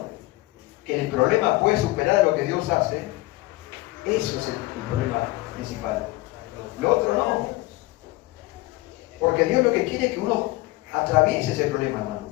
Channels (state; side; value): quieter; right; 20.4 dB